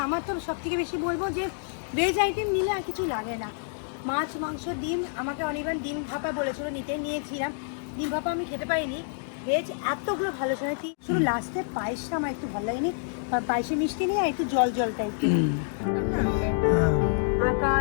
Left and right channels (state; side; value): silent; right; digital silence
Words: আমার তো সব থেকে বেশি বলবো যে ভেজ আইটেম নিলে আর কিছু লাগে না। মাছ, মাংস, ডিম, আমাকে অনির্বাণ ডিম ভাপা বলেছিল, নিয়েছিলাম। ডিম ভাপা আমি খেতে পারিনি। ভেজ এতগুলো ভালো শুনেছি, শুধু লাস্টে পায়েসটা আমার একটু ভালো লাগেনি। পায়েসে মিষ্টি নেই, আর একটু জল জল টাইপের।